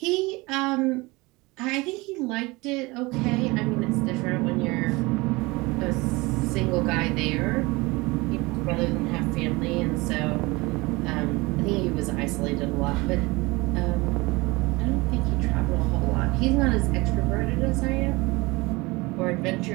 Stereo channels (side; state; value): left; quieter; 23.4 dB